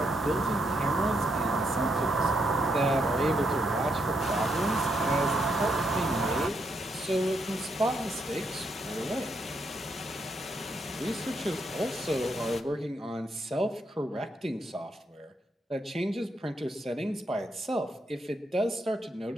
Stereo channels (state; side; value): normal; both; correlation 0.78